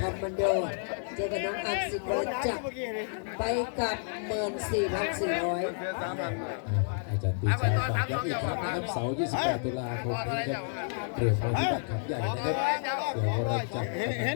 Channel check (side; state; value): right; silent; digital silence